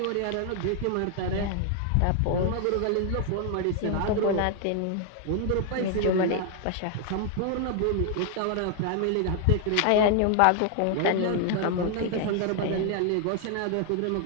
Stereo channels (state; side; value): different; both; correlation 0.00